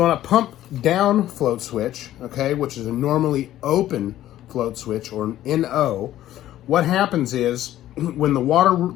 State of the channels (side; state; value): right; quieter; 13.3 dB